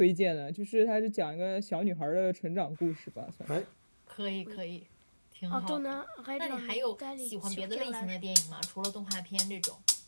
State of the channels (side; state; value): both; inverted; correlation -1.00